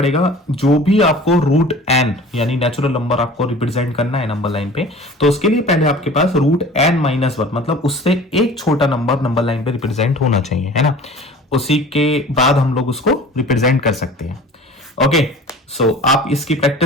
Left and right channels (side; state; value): both; normal; correlation 0.43